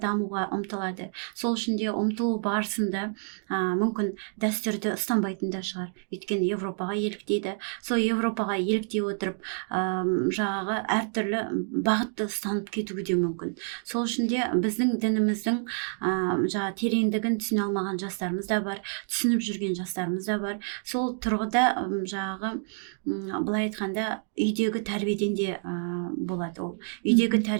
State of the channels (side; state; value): left; silent; 56 dB below the other